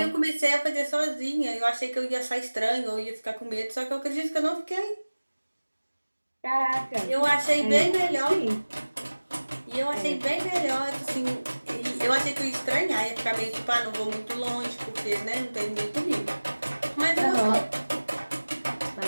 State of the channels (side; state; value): both; inverted; correlation -1.00